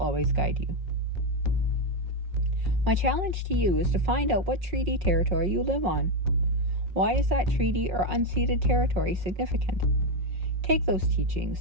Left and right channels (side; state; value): left; late; 5.5 ms